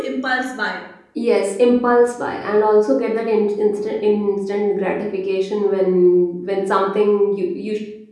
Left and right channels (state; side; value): identical; both; correlation 1.00